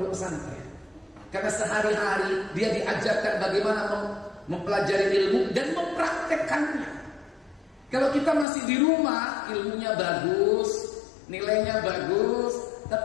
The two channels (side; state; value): right; drops out; at 8.5 s